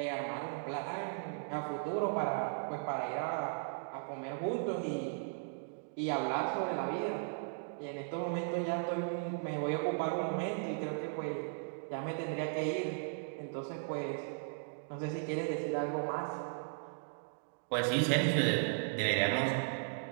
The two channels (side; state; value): left; silent; digital silence